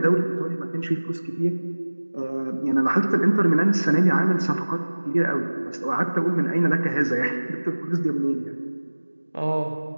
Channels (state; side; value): inverted; both; correlation -1.00